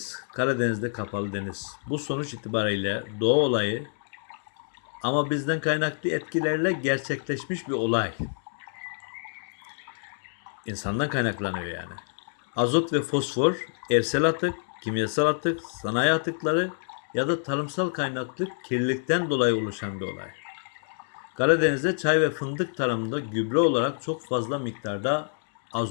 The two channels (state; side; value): silent; right; digital silence